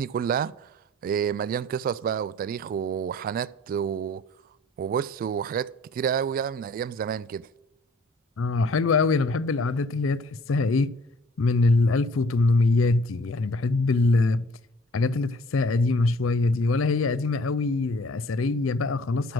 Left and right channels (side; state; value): both; normal; correlation 0.54